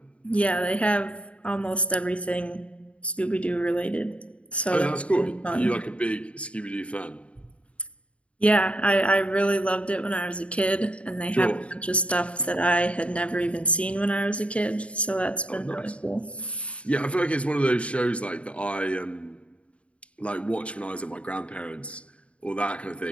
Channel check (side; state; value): right; late; 0.062 ms